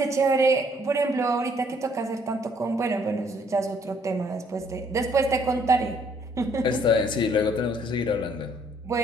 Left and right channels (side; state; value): both; normal; correlation 0.65